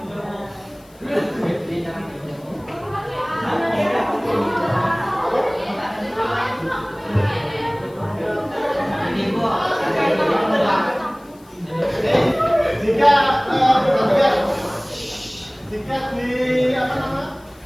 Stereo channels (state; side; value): noise; left; hiss, 29 dB below the sound